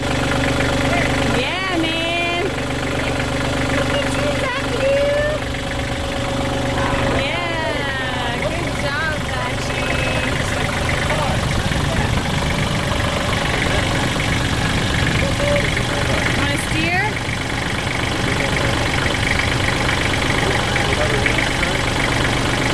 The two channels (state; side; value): identical; both; correlation 1.00